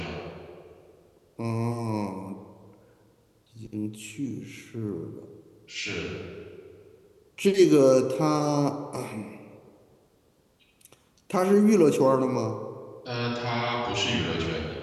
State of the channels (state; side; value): identical; both; correlation 1.00